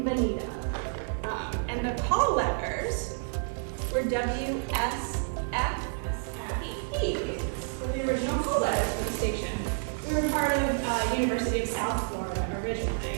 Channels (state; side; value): silent; left; 58 dB below the other